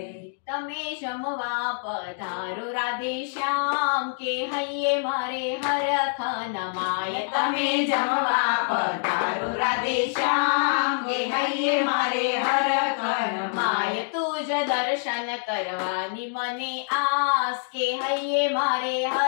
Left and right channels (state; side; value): silent; right; digital silence